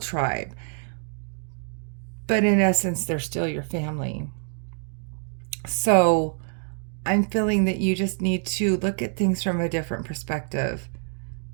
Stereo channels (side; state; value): left; silent; 61 dB below the other